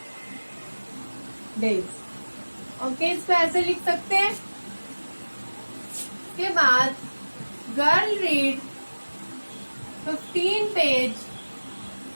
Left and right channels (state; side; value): inverted; both; correlation -1.00